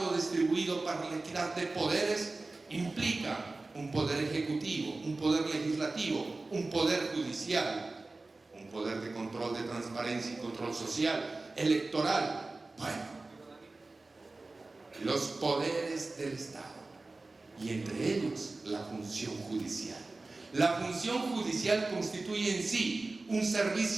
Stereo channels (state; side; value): quieter; left; 3.3 dB